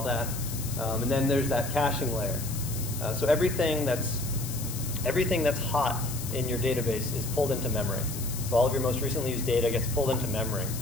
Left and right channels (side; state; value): left; noise; hiss, 9 dB below the sound